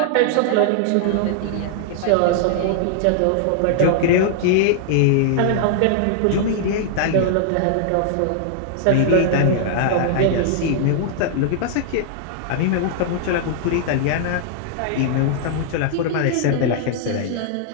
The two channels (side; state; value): both; different; correlation -0.01